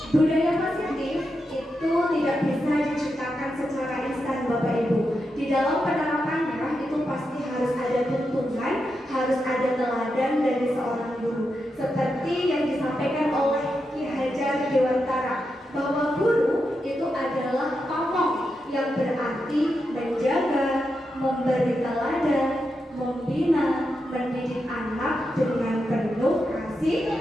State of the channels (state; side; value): normal; both; correlation 0.86